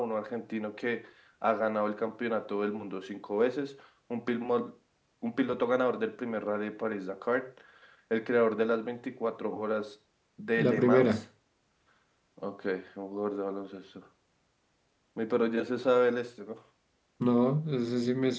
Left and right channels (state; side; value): identical; both; correlation 1.00